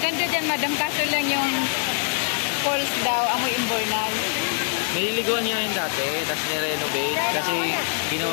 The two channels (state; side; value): silent; right; digital silence